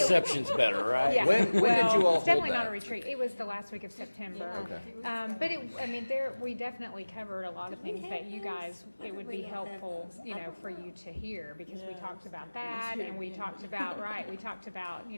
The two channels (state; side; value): inverted; both; correlation -1.00